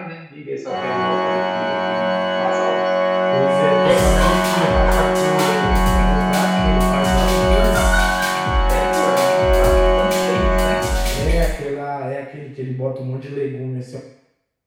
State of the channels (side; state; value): both; identical; correlation 1.00